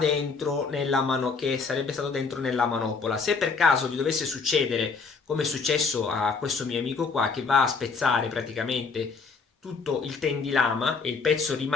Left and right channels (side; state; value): right; quieter; 4.8 dB